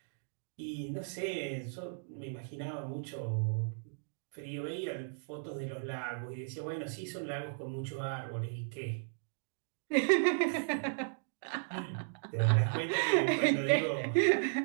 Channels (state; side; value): silent; left; digital silence